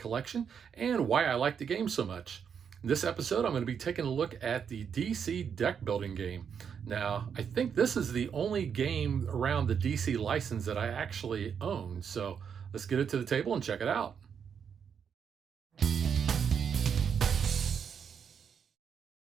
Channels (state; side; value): quieter; left; 7.3 dB